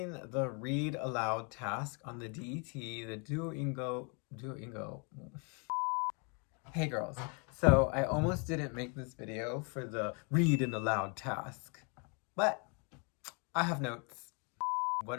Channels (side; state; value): right; quieter; 35.2 dB